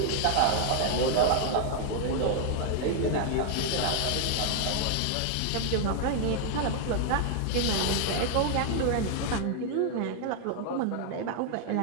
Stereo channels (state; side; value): different; both; correlation 0.00